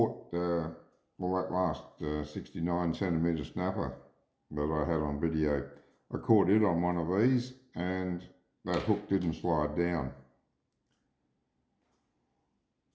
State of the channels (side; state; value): both; identical; correlation 1.00